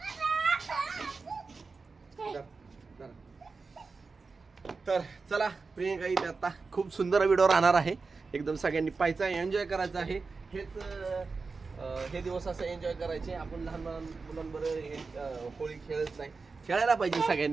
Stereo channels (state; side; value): quieter; left; 4.3 dB